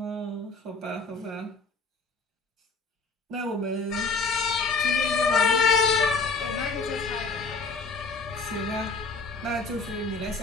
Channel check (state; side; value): quieter; right; 3.9 dB